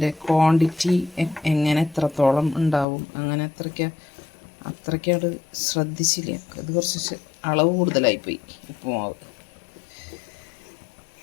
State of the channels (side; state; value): right; drops out; at 2.9 s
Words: ക്വാണ്ടിറ്റി എങ്ങനെ എത്രത്തോളം ഉണ്ടാവും അങ്ങനെ അത്രയ്ക്കത് ശ്രദ്ധിച്ചില്ല. അത് കുറച്ച് അളവ് കൂടുതലായിപ്പോയി ഉപ്പുമാവ്.